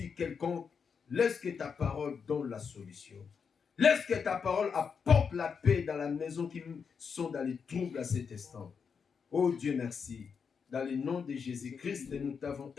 quelconques, laisse que ta parole donne la solution. Laisse que ta parole apporte la paix dans la maison qui sont dans les troubles à cet instant. Oh Dieu, merci. Dans le nom de Jésus-Christ, nous t'avons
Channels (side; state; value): right; quieter; 6.2 dB